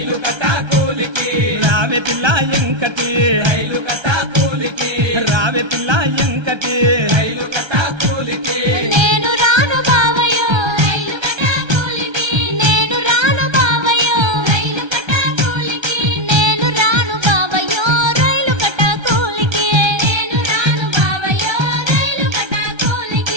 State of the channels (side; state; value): left; late; 1.3 ms